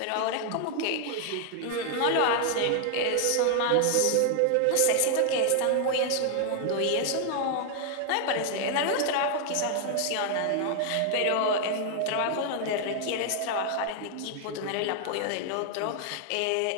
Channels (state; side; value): different; both; correlation 0.00